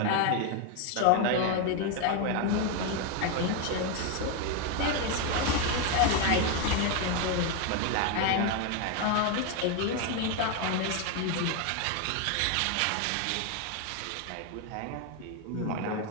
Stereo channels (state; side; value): different; both; correlation 0.01